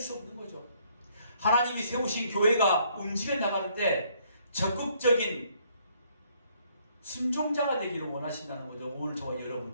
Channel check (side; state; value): both; inverted; correlation -0.66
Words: 없는 거죠. 하나님이 세우신 교회가 움직여 나갈 때 적극적인 순종자가 되기를 원하신다는 거죠. 오늘 저와 여러분,